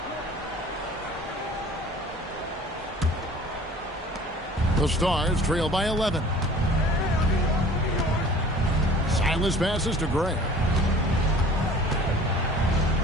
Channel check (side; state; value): both; normal; correlation 0.48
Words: The Stars trail by 11. Silas passes to Gray.